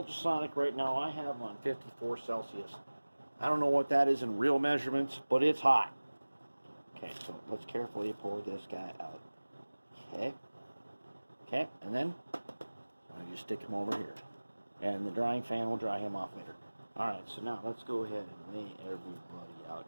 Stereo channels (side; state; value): both; inverted; correlation -1.00